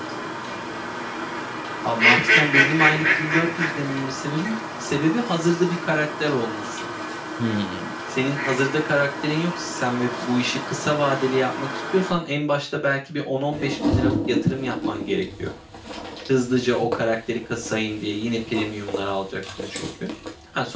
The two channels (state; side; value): identical; both; correlation 1.00